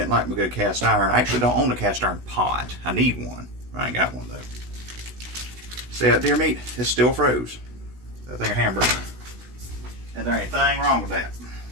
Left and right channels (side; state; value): left; late; 16 ms